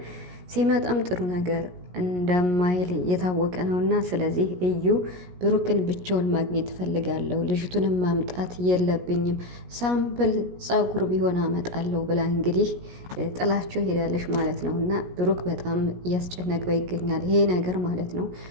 ሲመጣም ጥሩ ነገር እንደማይል የታወቀ ነው። እና ስለዚህ እዩ ብሩክን ብቻውን ማግኘት እፈልጋለሁ፣ ልጅቱንም ማምጣት የለብኝም፣ ሳምፕል ጸጉር ቢሆን አመጣለሁ ብላ እንግዲህ ጥላቸው ሄዳለች ማለት ነው። እና ብሩክ በጣም እያስጨነቀው ይገኛል ይሄ ነገር ማለት ነው።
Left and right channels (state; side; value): late; left; 17 ms